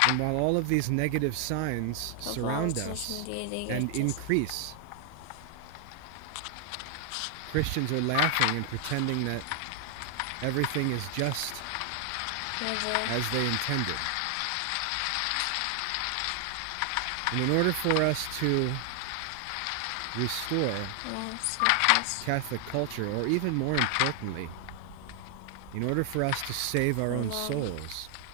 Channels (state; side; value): different; both; correlation 0.00